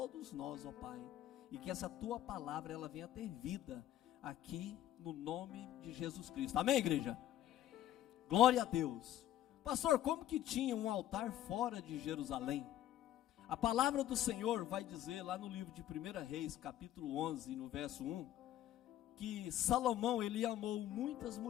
nós, ó Pai. E que essa tua palavra ela venha ter vida aqui no nome de Jesus Cristo. Amém, igreja? Glória a Deus. Pastor, como que tinha um altar fora de Jerusalém? A palavra do Senhor vai dizer lá no livro de 1 Reis, capítulo 11, no verso 1, que Salomão, ele amou muitas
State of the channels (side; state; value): right; quieter; 12.7 dB